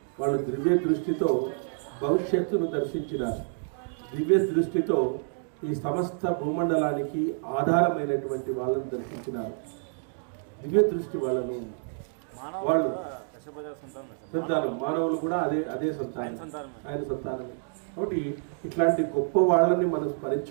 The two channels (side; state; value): left; silent; digital silence